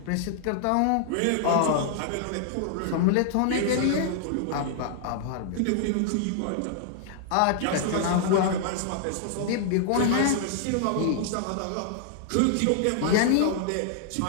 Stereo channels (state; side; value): different; both; correlation -0.01